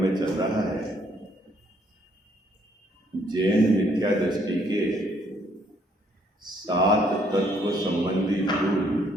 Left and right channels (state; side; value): normal; both; correlation 0.67